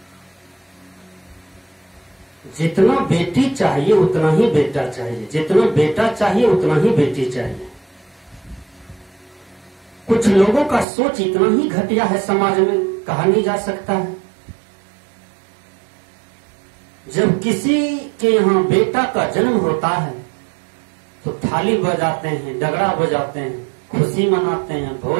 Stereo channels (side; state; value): left; drops out; at 10.9 s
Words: जितना बेटी चाहिए उतना ही बेटा चाहिए, जितना बेटा चाहिए उतना ही बेटी चाहिए। कुछ लोगों का सोच इतना ही घटिया है, समाज में कहा नहीं जा सकता है। जब किसी के यहाँ बेटा का जन्म होता है तो थाली बजाते हैं, डगरा बजाते हैं, खुशी मनाते हैं,